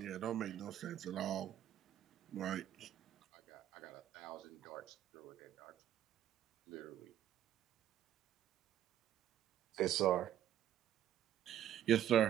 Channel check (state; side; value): quieter; left; 11.4 dB